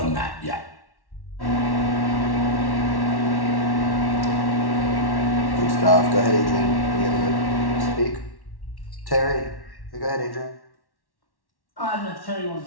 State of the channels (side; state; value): right; late; 1.1 ms